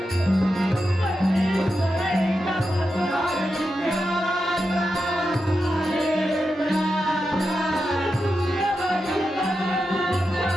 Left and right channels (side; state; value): both; normal; correlation 0.89